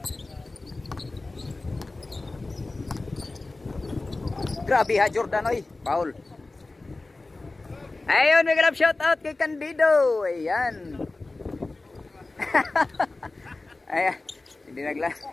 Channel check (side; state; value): right; quieter; 3.2 dB